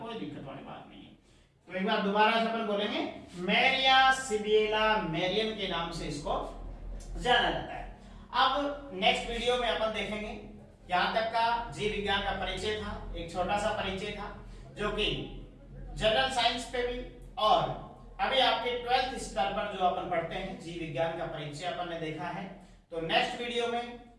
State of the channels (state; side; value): identical; both; correlation 1.00